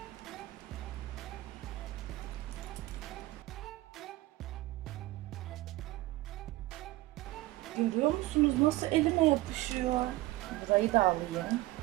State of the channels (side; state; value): left; quieter; 18.8 dB